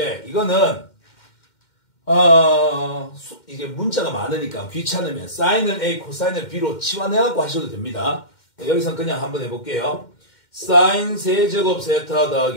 이거는 이제 문자가 많으니까 귀찮으면 사인을 A, 코사인을 B로 치환해갖고 하셔도 됩니다. 여기선 그냥 한번 해볼게요. 사인 세제곱 세타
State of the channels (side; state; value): right; late; 2.1 ms